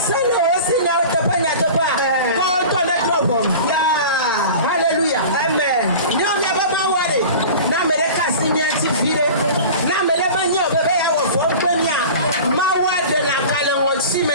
sele o si nya to pa ko to na drop ya hallelujah amen nyo me ba ma wore na me le ka si nya ti fire na me le ba nya o be ya wo fo gbe nya ma wa de na kale won si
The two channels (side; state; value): both; inverted; correlation -0.37